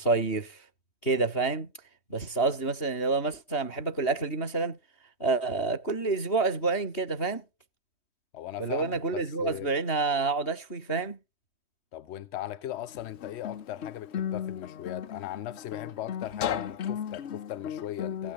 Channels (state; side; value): late; right; 3.1 ms